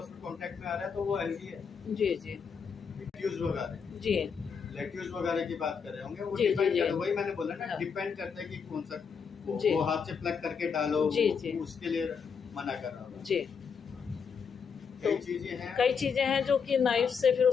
कांटेक्ट में आ रहा है तो वो हेल्दी है। जी। जी। लेट्यूज वगैरह जी। लेट्यूज वगैरह की बात कर रहे होंगे, वो जी, जी, डिपेंड जी। करता है, वही मैंने बोला ना, हाँ। डिपेंड करता है कि कौन सा जी। वो हाथ से प्लग करके डालो, जी, जी। उसके लिए मना कर रहा हूँ। जी। कई चीजें हैं, कई चीजें हैं जो कि नाइफ से फिर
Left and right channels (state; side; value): quieter; right; 6.2 dB